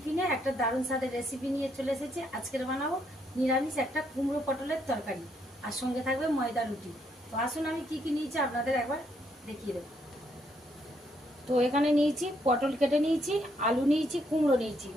একটা দারুণ স্বাদের রেসিপি নিয়ে চলে এসেছি। আজকের বানাবো নিরামিষ একটা কুমড়ো পটলের তরকারি, আর সঙ্গে থাকবে ময়দা রুটি। তো আসুন আমি কি কি নিয়েছি আপনাদের একবার দেখিয়ে দেবো। তো এখানে নিয়েছি পটল কেটে নিয়েছি, আলু নিয়েছি, কুমড়ো নিয়েছি,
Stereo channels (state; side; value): normal; both; correlation 0.73